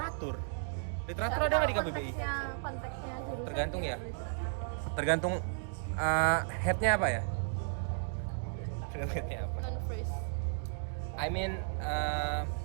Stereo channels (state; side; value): silent; left; digital silence